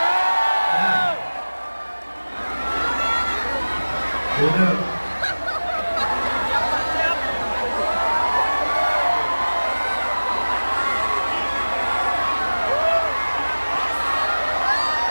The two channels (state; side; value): inverted; both; correlation -1.00